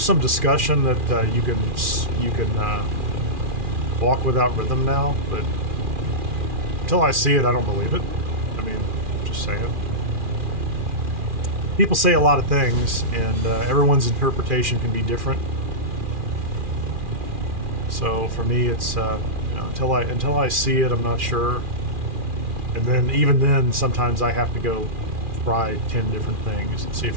some discussion that you can walk without rhythm now, but until I see it, I don't believe it. I mean, just saying. People say a lot of things, and everyone's interpretation can be different. So for me, it's you know, until I see it, I'm not sure. And then even then, sometimes I have to go try 10 different things and see if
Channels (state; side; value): late; left; 2.4 ms